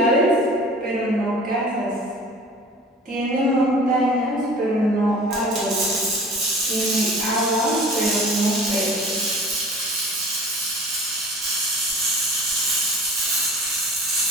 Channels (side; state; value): both; normal; correlation 0.43